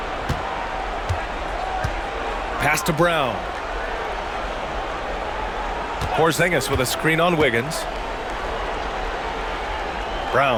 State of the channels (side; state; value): both; identical; correlation 1.00